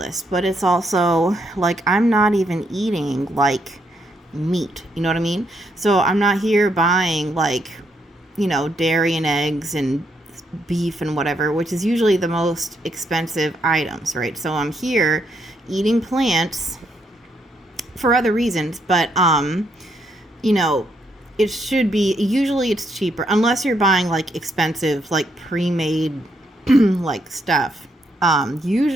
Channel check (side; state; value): both; normal; correlation 0.76